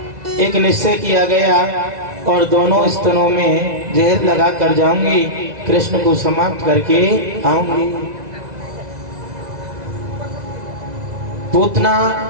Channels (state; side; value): late; left; 2.0 ms